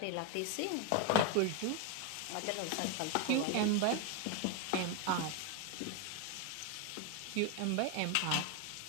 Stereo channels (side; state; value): both; different; correlation 0.01